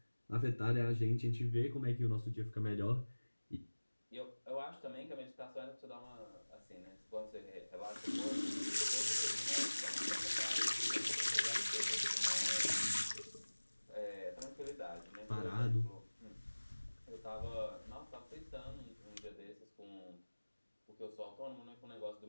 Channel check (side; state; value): both; inverted; correlation -1.00